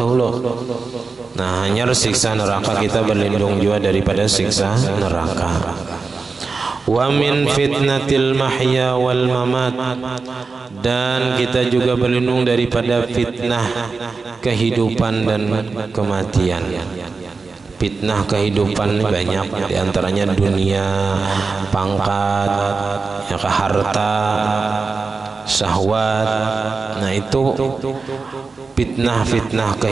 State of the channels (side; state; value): left; quieter; 4.4 dB